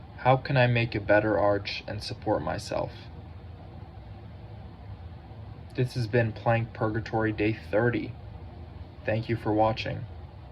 How can I make a better arch and support myself? This has been Plank Purgatory Day 30. Thank you for watching.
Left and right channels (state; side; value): identical; both; correlation 1.00